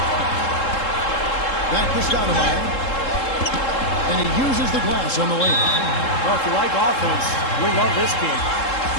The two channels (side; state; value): right; late; 3.7 ms